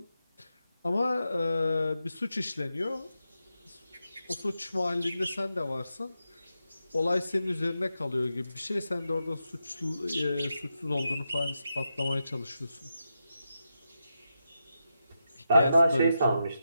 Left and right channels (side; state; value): both; inverted; correlation -0.87